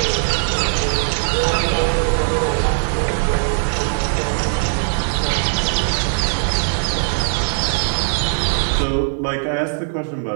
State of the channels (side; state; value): left; silent; 66 dB below the other